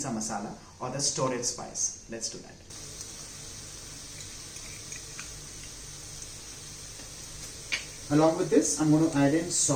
masala or the storage spice. Let's do that. Along with this, I'm going to add in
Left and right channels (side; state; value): both; identical; correlation 1.00